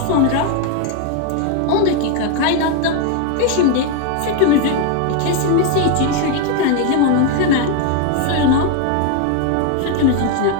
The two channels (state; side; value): different; both; correlation 0.01